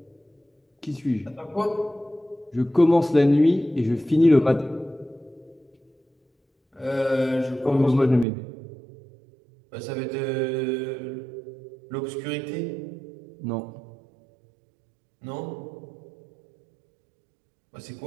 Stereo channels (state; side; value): drops out; left; at 8.2 s